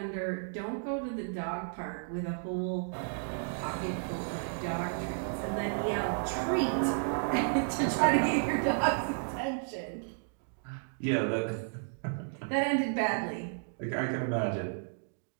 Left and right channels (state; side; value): silent; left; digital silence